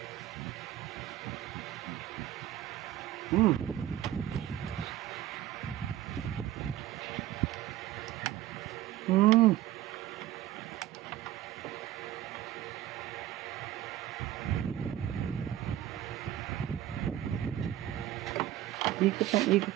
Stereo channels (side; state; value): left; quieter; 13.1 dB